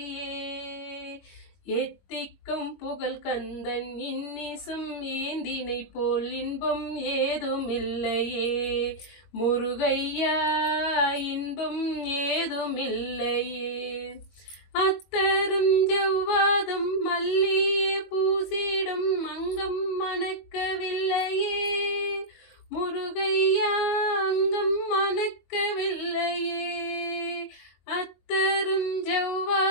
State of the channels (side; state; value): right; late; 22 ms